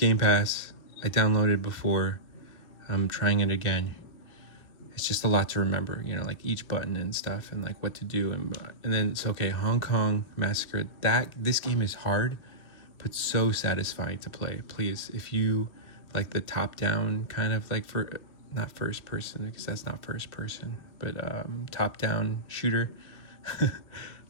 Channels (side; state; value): right; late; 2.6 ms